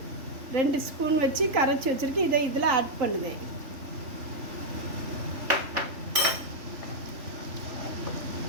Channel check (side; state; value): left; late; 3.4 ms